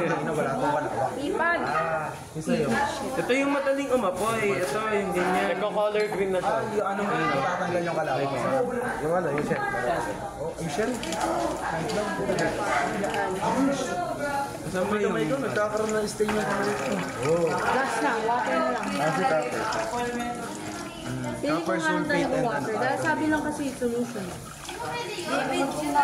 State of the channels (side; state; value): both; identical; correlation 1.00